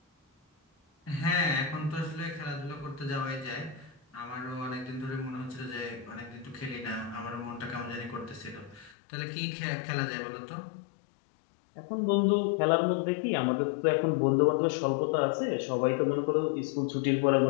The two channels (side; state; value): right; drops out; at 9.0 s